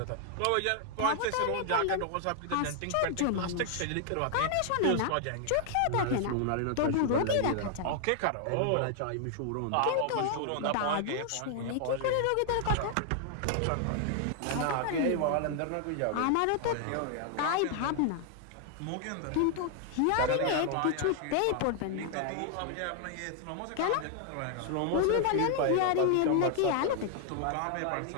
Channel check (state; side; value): different; both; correlation 0.00